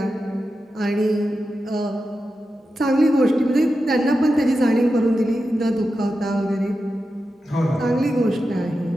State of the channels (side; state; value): both; normal; correlation 0.90